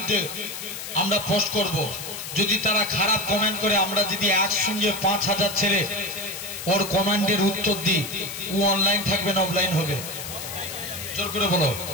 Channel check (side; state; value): left; noise; hiss, 8 dB below the sound